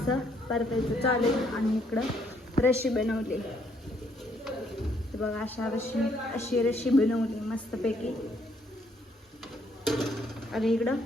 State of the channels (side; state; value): both; normal; correlation 0.69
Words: परतायचं चालू आणि इकडं रशी बनवली. तर बघा अशी रशी बनवली मस्तपैकी आणि इकडं